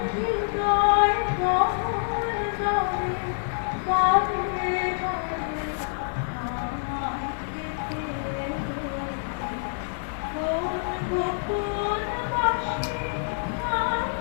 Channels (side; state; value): right; silent; 60 dB below the other